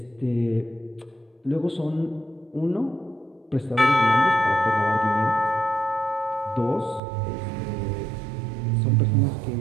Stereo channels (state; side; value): drops out; left; at 7.0 s